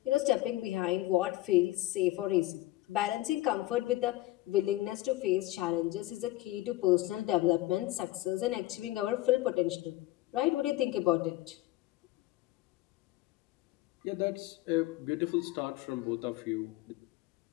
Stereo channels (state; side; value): quieter; right; 17.2 dB